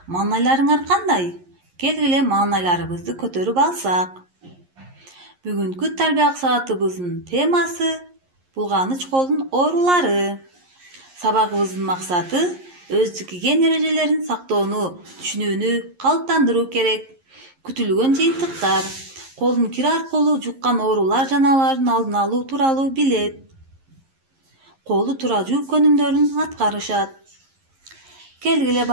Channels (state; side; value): late; left; 11 ms